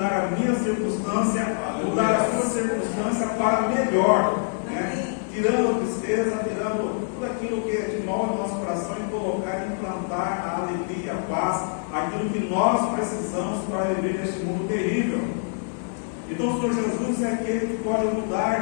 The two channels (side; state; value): right; silent; digital silence